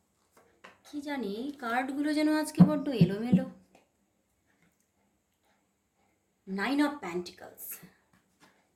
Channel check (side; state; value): both; identical; correlation 1.00